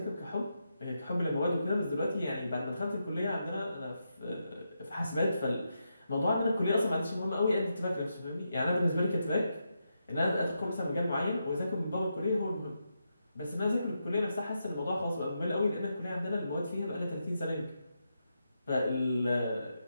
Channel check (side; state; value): both; inverted; correlation -0.85